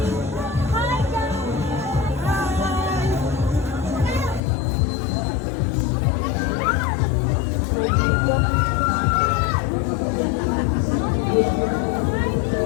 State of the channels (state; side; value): drops out; right; at 4.4 s